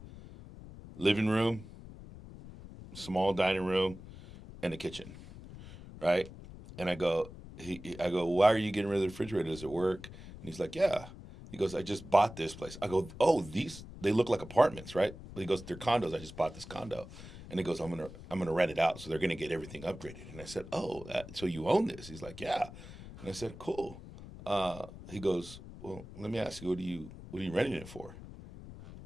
living room, small dining room, and a kitchen, right? And I go, why are you getting rid of the refrigerator? Does it work? And he's like, yeah. He goes, I just bought this place. I go, oh, they look like apartments, right? He goes, they're condos. I just bought this condo. And he goes, I'm gonna rent it out, so they're gonna get everything upgraded. And I said, oh, so you own this? He's like, yeah. And I said, cool. He goes, well, let me ask you, what are you renting it for?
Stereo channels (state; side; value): noise; left; rumble, 15 dB below the sound